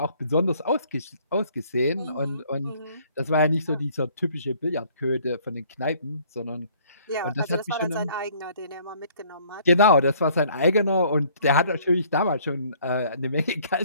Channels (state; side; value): inverted; both; correlation -0.59